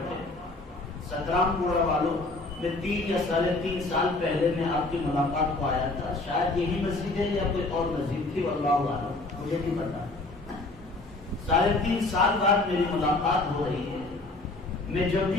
17 پورا والوں میں 3 یا 3.5 سال پہلے میں آپ کی ملاقات کو آیا تھا، شاید یہی مسجد ہے یا کوئی اور مسجد تھی، واللہ اعلم، مجھے نہیں پتا۔ 3.5 سال بعد میری ملاقات ہو رہی ہے۔ میں جب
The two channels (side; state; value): right; quieter; 3.1 dB